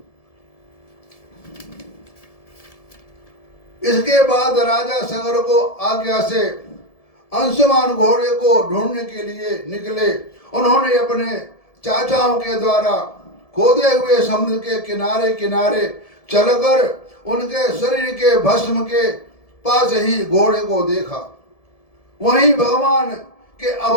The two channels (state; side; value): late; right; 1.7 ms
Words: इसके बाद राजा सगर को आज्ञा से अंशुमान घोड़े को ढूंढने के लिए निकले। उन्होंने अपने चाचाओं के द्वारा खोदे हुए समुद्र के किनारे किनारे चलकर उनके शरीर के भस्म के पास ही घोड़े को देखा। वहीं भगवान के